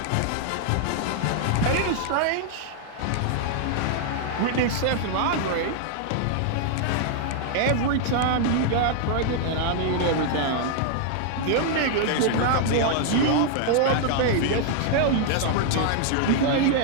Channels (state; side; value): different; both; correlation 0.00